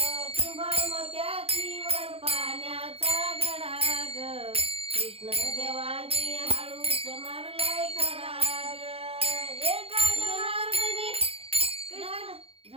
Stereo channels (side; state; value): left; late; 0.28 ms